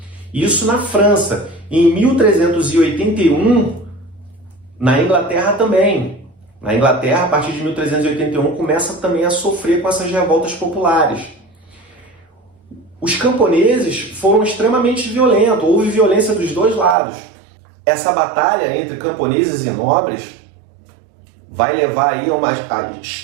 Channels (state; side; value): drops out; left; at 16.9 s